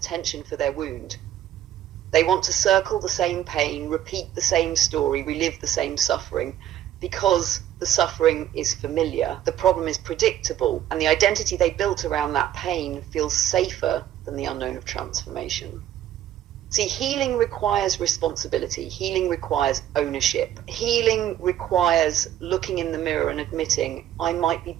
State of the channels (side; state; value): left; quieter; 11.6 dB